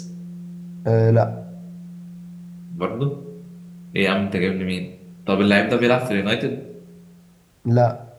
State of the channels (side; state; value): both; identical; correlation 1.00